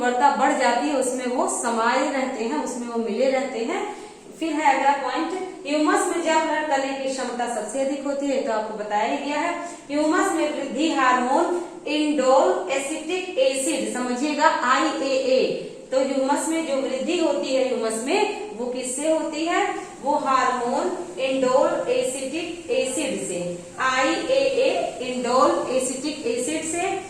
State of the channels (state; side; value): identical; both; correlation 1.00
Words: बढ़ जाती है, उसमें वो समाये रहते हैं, उसमें वो मिले रहते हैं। फिर है अगला पॉइंट, ह्यूमस में जल ग्रहण करने की क्षमता सबसे अधिक होती है, तो आपको बताया ही गया है। ह्यूमस में वृद्धि हार्मोन इंडोल एसिटिक एसिड, समझिएगा IAA, तो ह्यूमस में जो वृद्धि होती है ह्यूमस में, वो किससे होती है, वो हार्मोन इंडोल एसिटिक एसिड से, IAA इंडोल एसिटिक एसिड से